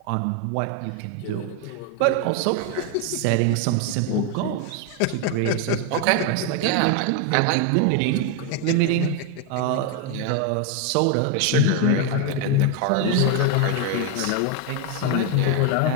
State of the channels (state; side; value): different; both; correlation 0.01